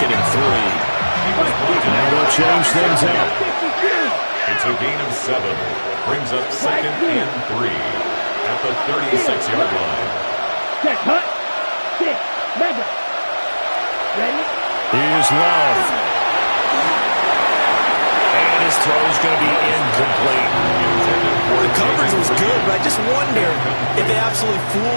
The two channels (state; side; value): inverted; both; correlation -1.00